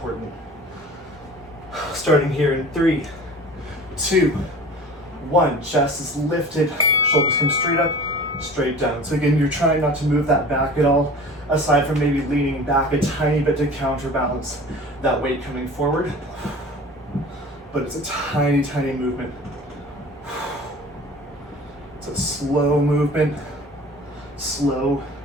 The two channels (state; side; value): normal; both; correlation 0.40